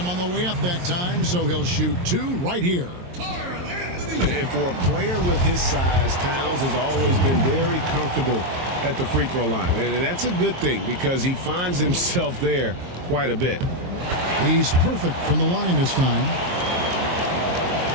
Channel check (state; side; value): late; left; 22 ms